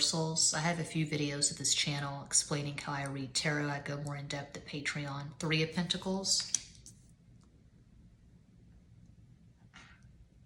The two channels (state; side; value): identical; both; correlation 1.00